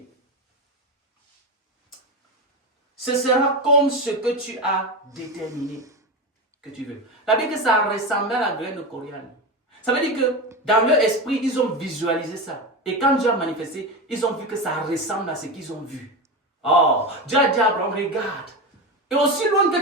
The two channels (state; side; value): normal; both; correlation 0.19